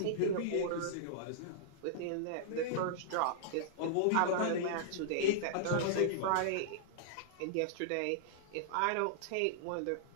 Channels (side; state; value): both; different; correlation -0.02